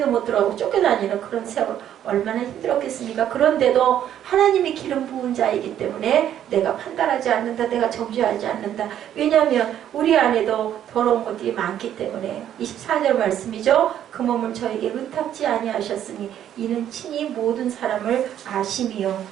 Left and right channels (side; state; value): left; quieter; 10.6 dB